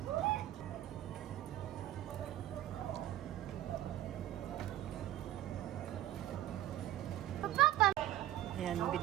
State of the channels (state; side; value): quieter; left; 13.6 dB